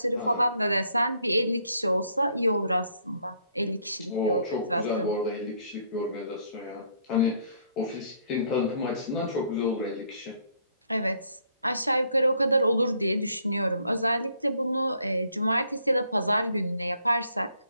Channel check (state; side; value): inverted; both; correlation -0.67